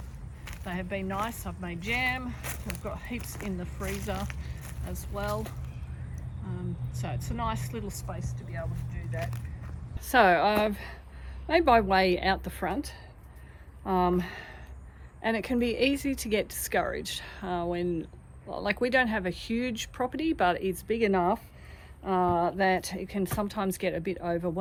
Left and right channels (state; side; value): identical; both; correlation 1.00